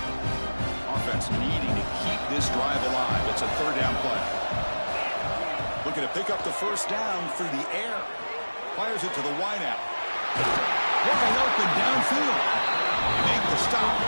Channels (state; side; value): inverted; both; correlation -1.00